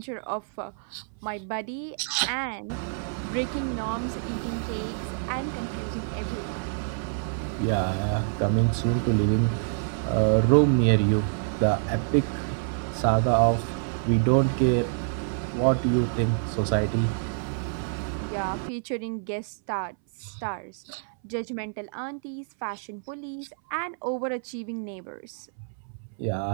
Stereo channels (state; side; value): silent; left; 60 dB below the other